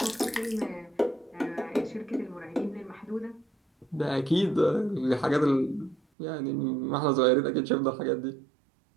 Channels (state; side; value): drops out; left; at 6.0 s